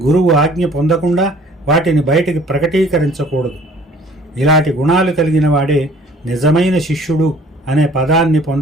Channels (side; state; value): both; normal; correlation 0.53